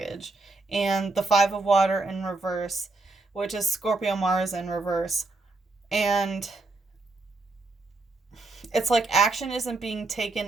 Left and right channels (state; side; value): quieter; left; 3.3 dB